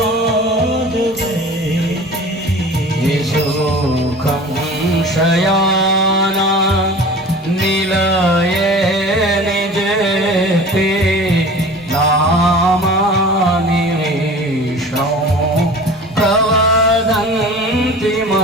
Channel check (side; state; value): both; normal; correlation 0.40